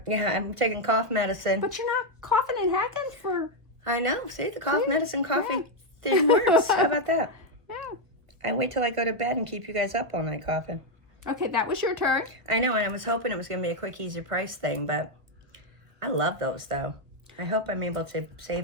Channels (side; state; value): left; late; 1.5 ms